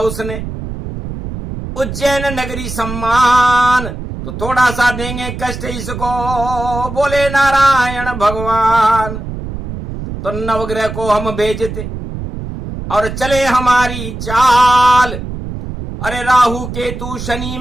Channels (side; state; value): right; noise; rumble, 8 dB below the sound